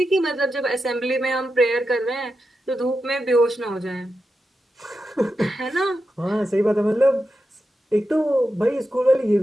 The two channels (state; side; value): normal; both; correlation 0.89